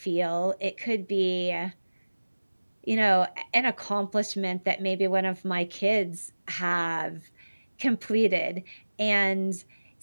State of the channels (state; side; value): inverted; both; correlation -1.00